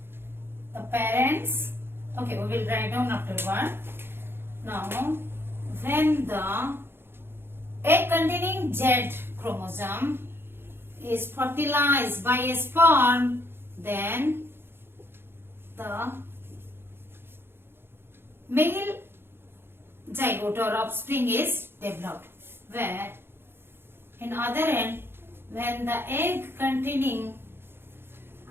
The parents. Okay, we will write down after one. Now, when the egg containing Z chromosome is fertilized by a sperm, then the male zygote or offspring is developed. Where in other end, when the egg containing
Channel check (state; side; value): late; left; 0.11 ms